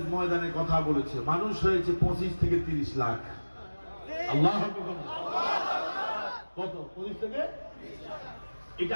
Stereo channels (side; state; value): both; inverted; correlation -1.00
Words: ময়দানে কথা বলেছে। মানুষ হয়েছে 25 থেকে 30 লাখ। আল্লাহু আকবার। কত? 25 থেকে 30 লাখ।